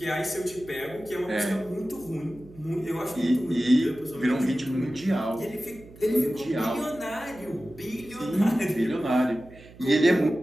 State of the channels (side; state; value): right; noise; hum, 21 dB below the sound